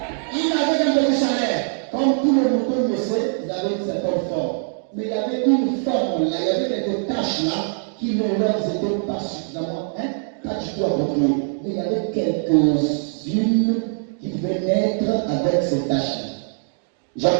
Il n'avait qu'un petit salaire. Comme tous les moutons le savent, ils avaient une certaine forme. Mais il y avait une forme là, il y avait quelques tâches là qui ne leur étaient pas suffisamment, pas du tout appropriées. Mais il y avait quelques-unes qui pouvaient naître avec ces tâches-là.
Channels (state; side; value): silent; left; digital silence